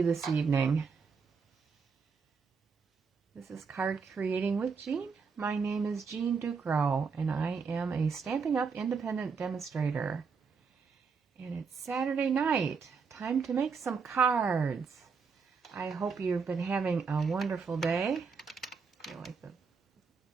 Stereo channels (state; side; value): quieter; left; 5.4 dB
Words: this evening? This is Card Creating with Jean. My name is Jean Ducrow, and I am a Stampin' Up! Independent demonstrator. And it's Saturday night. Time to make some cards. I hope you've been having a wonderful day. I feel like the